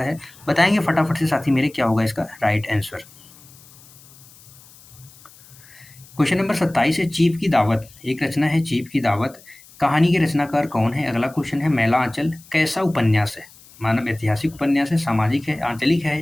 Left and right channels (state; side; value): noise; left; hiss, 24 dB below the sound